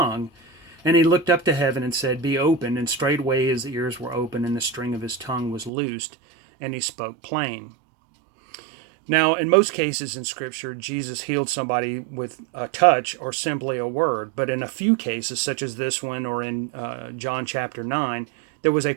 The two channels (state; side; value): drops out; left; at 5.7 s